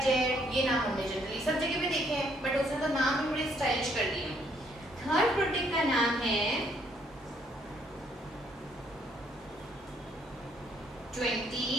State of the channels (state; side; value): normal; both; correlation 0.68